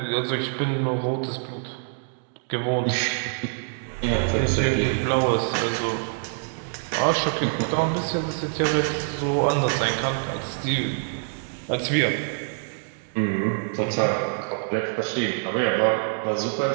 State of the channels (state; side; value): silent; left; digital silence